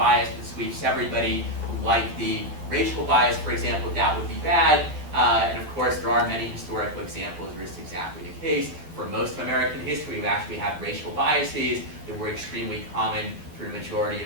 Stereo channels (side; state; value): left; late; 12 ms